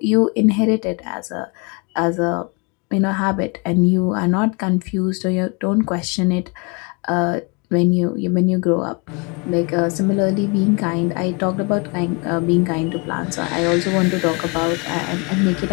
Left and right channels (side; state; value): right; quieter; 31.1 dB